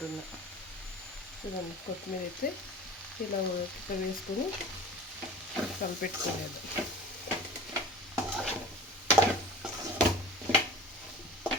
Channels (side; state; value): both; normal; correlation 0.41